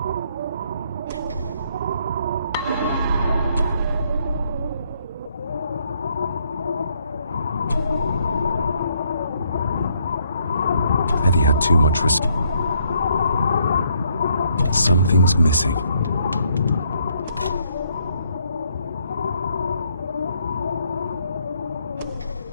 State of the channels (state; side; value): inverted; both; correlation -0.71